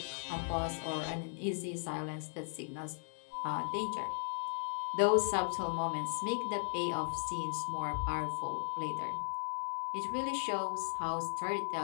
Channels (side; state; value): right; silent; digital silence